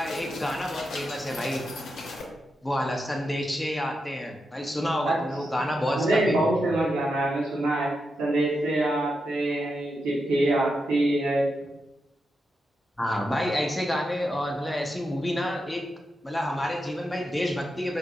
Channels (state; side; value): normal; both; correlation 0.86